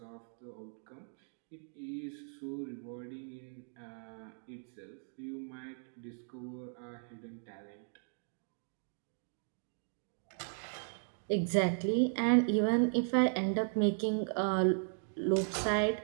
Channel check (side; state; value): left; silent; 53 dB below the other